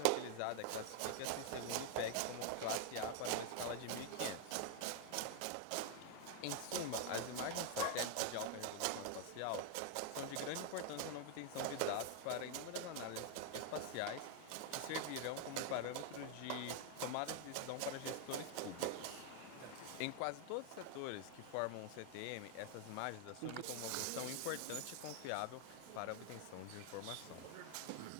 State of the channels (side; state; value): both; different; correlation 0.00